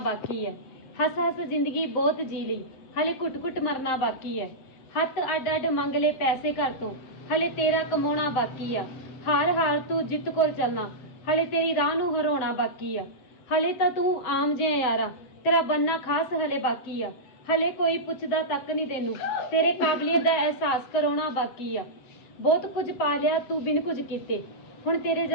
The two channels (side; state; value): right; late; 7.7 ms